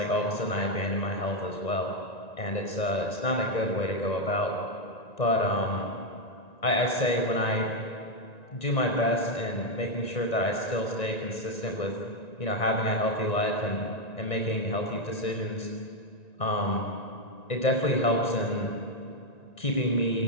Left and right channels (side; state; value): right; late; 1.9 ms